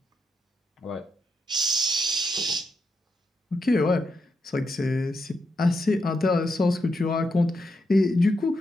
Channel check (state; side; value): normal; both; correlation 0.83